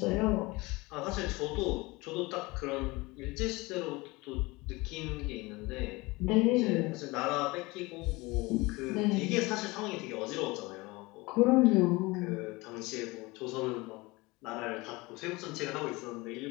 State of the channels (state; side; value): quieter; right; 23.1 dB